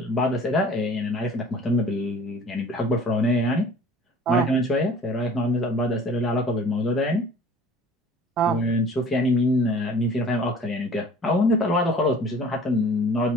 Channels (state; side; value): normal; both; correlation 0.47